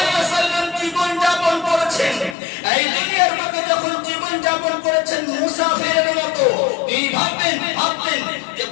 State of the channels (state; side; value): drops out; right; at 2.4 s